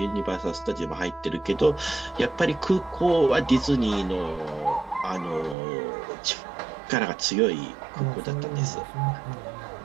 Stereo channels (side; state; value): left; drops out; at 5.6 s